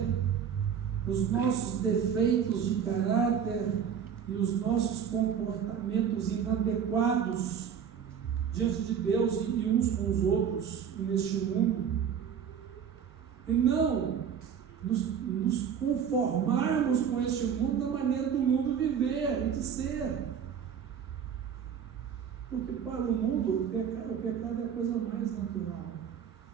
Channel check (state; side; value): quieter; left; 7.7 dB